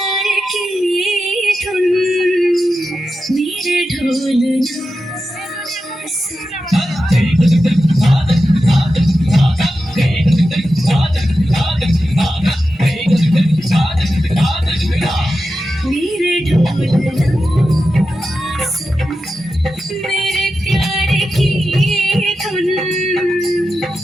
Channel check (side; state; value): both; normal; correlation 0.91